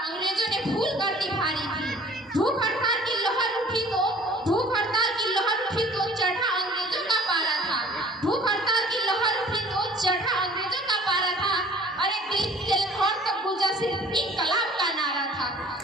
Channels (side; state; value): both; normal; correlation 0.50